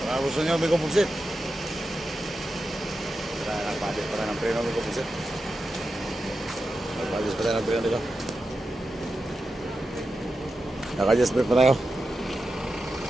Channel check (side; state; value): both; normal; correlation 0.90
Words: Gusto nyo may kumuksit. Nagpadis pa rin ng preno. May kumuksit. Nagpadis pa rin ng preno dito. Naka-adjust pa tayo.